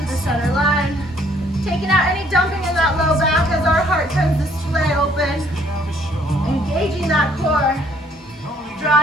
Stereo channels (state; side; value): normal; both; correlation 0.63